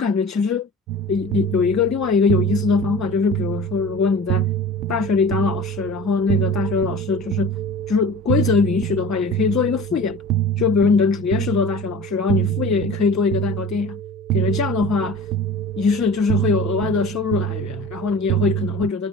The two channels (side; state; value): both; normal; correlation 0.39